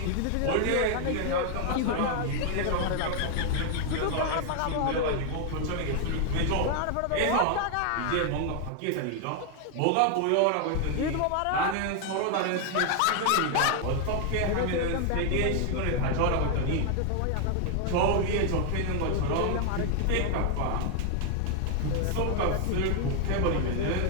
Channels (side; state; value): both; different; correlation 0.00